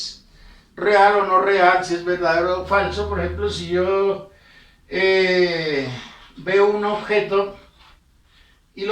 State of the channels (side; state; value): both; identical; correlation 1.00